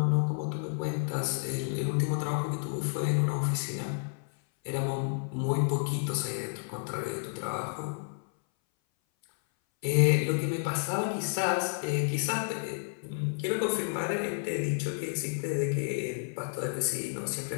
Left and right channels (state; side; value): silent; right; 57 dB below the other